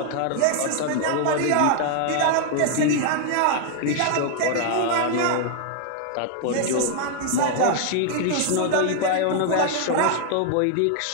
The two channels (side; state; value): both; different; correlation 0.00